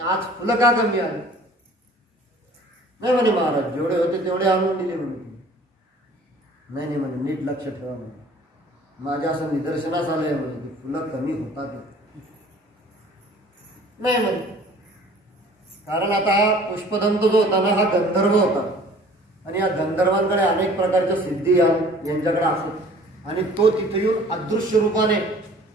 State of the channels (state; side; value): normal; both; correlation 0.50